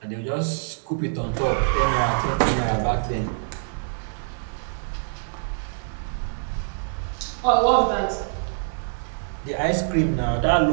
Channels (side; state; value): left; silent; digital silence